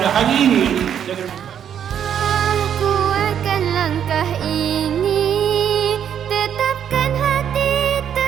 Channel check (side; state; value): left; quieter; 9.0 dB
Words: hari ini. Kuatkan langkah ini.